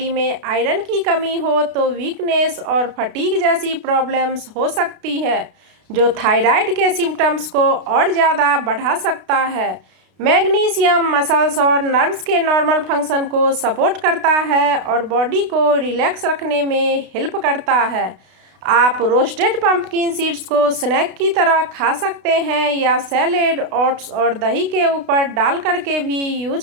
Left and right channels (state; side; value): late; left; 32 ms